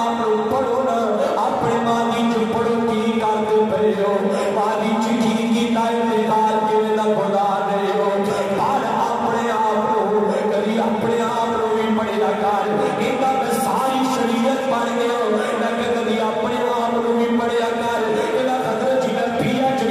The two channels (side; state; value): both; identical; correlation 1.00